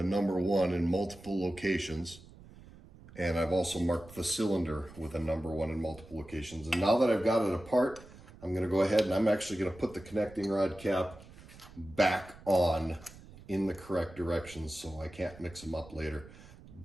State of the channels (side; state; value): right; noise; rumble, 20 dB below the sound